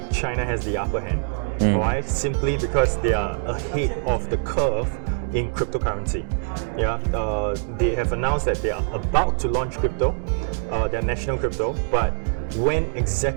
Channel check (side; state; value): left; silent; digital silence